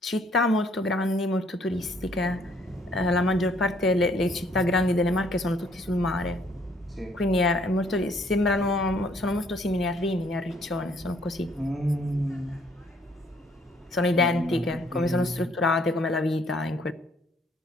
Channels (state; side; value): normal; both; correlation 0.64